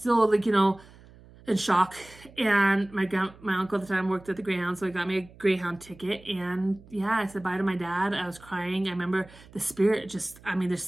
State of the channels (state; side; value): noise; right; hum, 23 dB below the sound